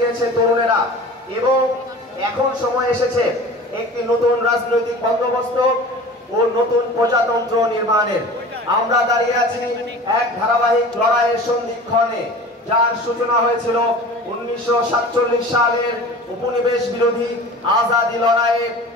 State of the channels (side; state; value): both; normal; correlation 0.39